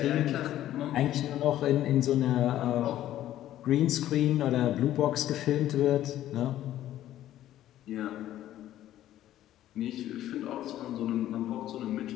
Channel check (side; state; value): right; quieter; 12.9 dB